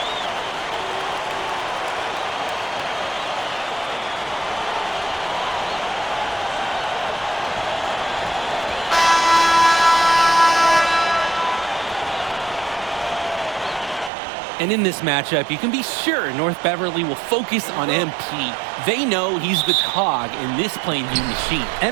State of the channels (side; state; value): left; drops out; at 14.1 s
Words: And in this matchup, you can be sure North Beverly will focus on MP. They know he's the cog in this Plainview machine.